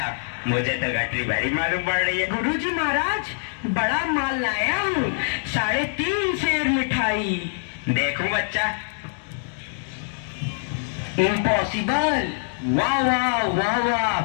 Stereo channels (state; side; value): silent; right; digital silence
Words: मुझे तो गठरी भरी मालूम पड़ रही है। गुरुजी महाराज, बड़ा माल लाया हूँ, 3.5 सेर मिठाई। देखूं बच्चा। इम्पॉसिबल। वाह वाह वाह